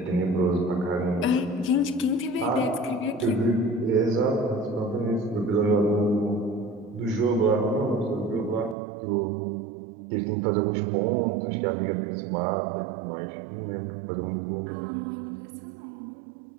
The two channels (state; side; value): drops out; left; at 8.8 s